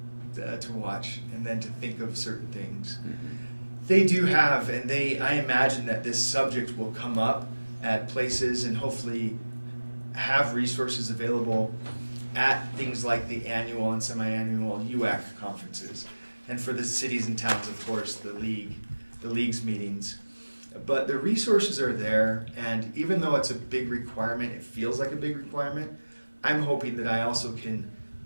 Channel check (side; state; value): both; inverted; correlation -1.00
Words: to watch and then to think of certain things. Mm-hmm. They do have, and I imagine that this subject will come up at places and hopefully have resources available at things like the annual and semi-annual UAC conferences. And for the cities and towns, of course, the league's meetings. But the resources are there, and even though it's a big requirement, it feels like a big requirement, I'm hoping that I also can